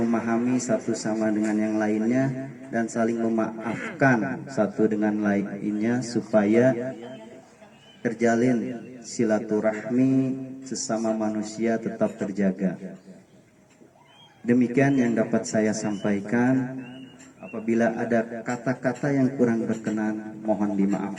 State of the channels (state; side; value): identical; both; correlation 1.00